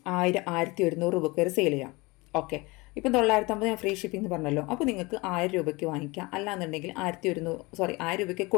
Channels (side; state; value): right; quieter; 24.6 dB